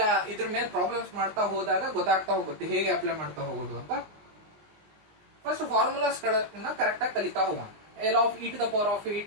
ಇದ್ರ ಮೇಲೆ ಪ್ರಾಬ್ಲಮ್ಸ್ ಮಾಡ್ತಾ ಹೋದಾಗ ಗೊತ್ತಾಗ್ತಾ ಹೋಗುತ್ತೆ ಹೇಗೆ ಅಪ್ಲೈ ಮಾಡ್ತಾ ಹೋಗೋದು ಅಂತ. ಫಸ್ಟ್ ಫಾರ್ಮುಲಾಸ್ ಗಳನ್ನ ಕರೆಕ್ಟ್ ಆಗಿ ಕಲಿತಾ ಹೋಗೋಣ. L of e to the power of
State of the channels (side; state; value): left; late; 19 ms